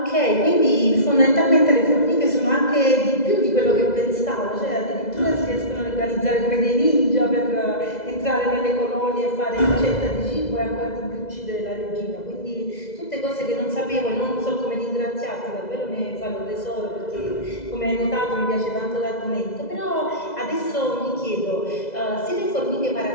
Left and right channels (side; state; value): right; late; 2.0 ms